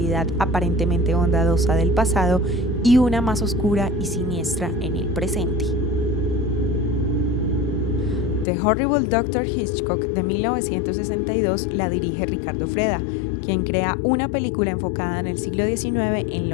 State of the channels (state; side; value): drops out; right; at 8.5 s